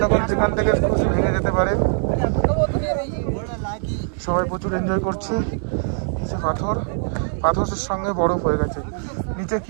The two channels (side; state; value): left; silent; 61 dB below the other